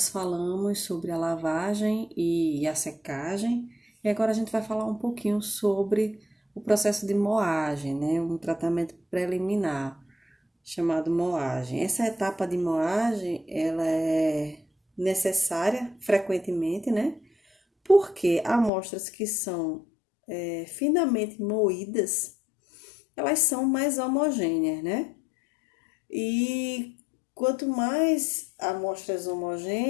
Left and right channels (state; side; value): drops out; right; at 18.7 s